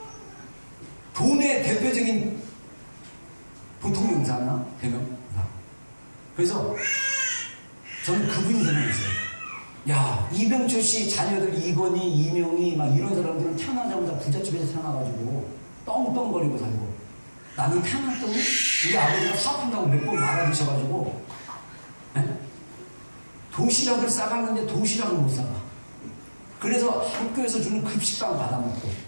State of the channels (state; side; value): inverted; both; correlation -1.00